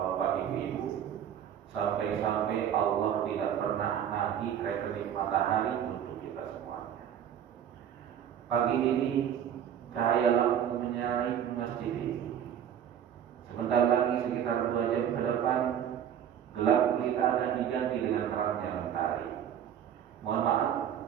ibu-ibu, sampai-sampai Allah tidak pernah nagih rekening matahari untuk kita semuanya. Pagi ini cahaya lampu menyala masjid ini. Sebentar lagi sekitar 2 jam ke depan gelap gulita akan diganti dengan terangnya matahari. Mohon maaf,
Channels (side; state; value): left; quieter; 9.4 dB